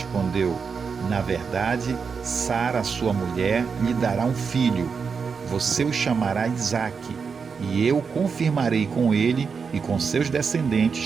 na verdade, Sara, sua mulher, lhe dará um filho. Você o chamará Isaque, e eu confirmarei com ele e com seus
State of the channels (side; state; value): left; quieter; 5.7 dB